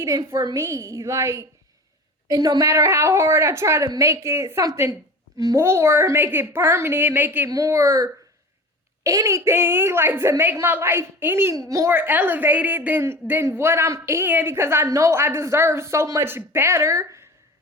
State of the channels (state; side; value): normal; both; correlation 0.35